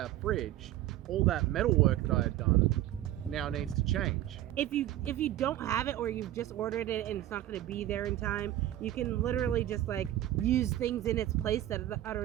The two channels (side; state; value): left; quieter; 13.7 dB